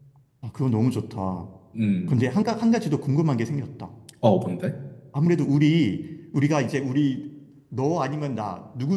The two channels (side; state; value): both; identical; correlation 1.00